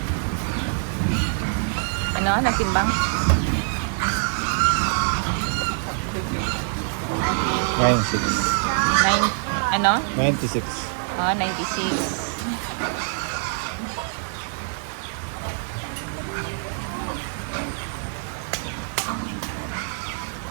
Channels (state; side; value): silent; left; digital silence